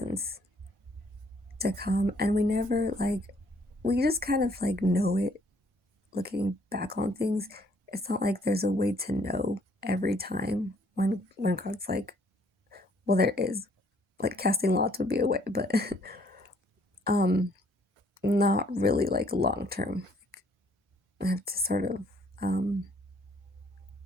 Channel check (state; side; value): normal; both; correlation 0.64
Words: to come, and we never we just kind of know it looking back on things. It's not like there's a way to know every time when God's well, there is, casting lots would be a way, but not really long term. I have to sort of